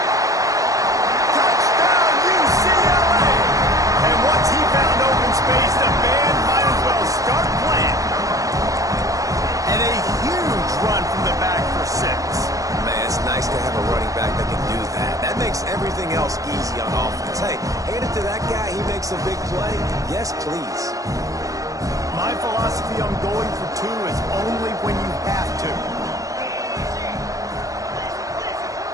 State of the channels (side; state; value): left; late; 0.16 ms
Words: Touchdown, UCLA! And once he found open space, the band might as well start playing. And a huge run from the back for 6. Man, it's nice to have a running back that can do that. That makes everything else easy on offense. Hey, hand it to that guy. He makes a big play. Yes, please. My philosophy on going for 2 is only when you have to.